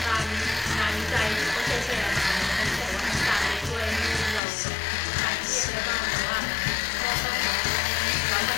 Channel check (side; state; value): right; drops out; at 4.4 s